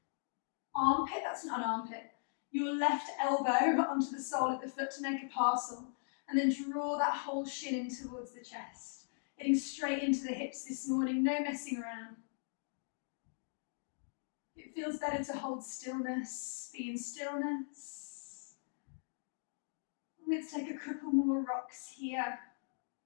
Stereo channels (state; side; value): silent; right; digital silence